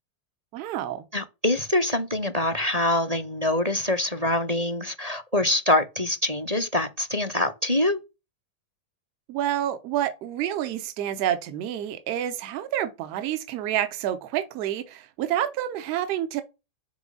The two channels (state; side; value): late; left; 1.8 ms